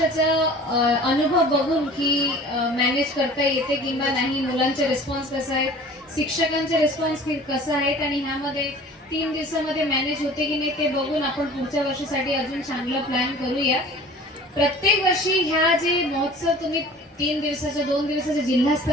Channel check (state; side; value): normal; both; correlation 0.44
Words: अनुभव बघून की मॅनेज करता येते किंवा नाही, मुलांचे रिस्पॉन्स कसा आहे, शिक्षकांचे रिस्पॉन्स कसा आहेत आणि ह्यामध्ये 3 दिवसामध्ये मॅनेज होते की नाही ते बघून आपण पुढच्या वर्षासाठी अजून चांगला प्लॅन करूया। प्रत्येक वर्षी ह्या जे महोत्सव तुम्ही 3 दिवसाच्या 2 दिवसाच्या जिल्हा